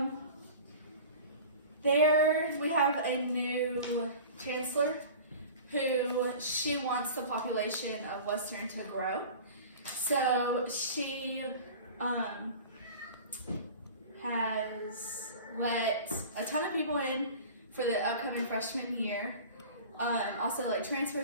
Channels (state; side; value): inverted; both; correlation -0.39